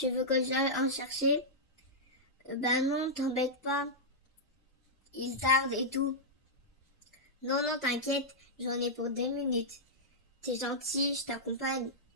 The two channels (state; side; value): normal; both; correlation -0.08